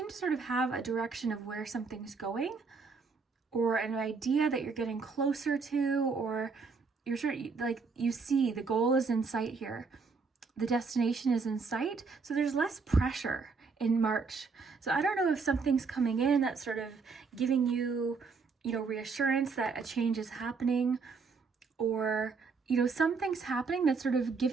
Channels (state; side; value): quieter; left; 4.8 dB